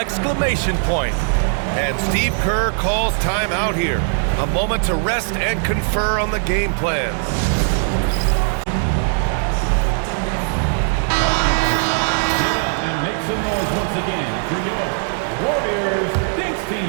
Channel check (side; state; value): left; silent; 60 dB below the other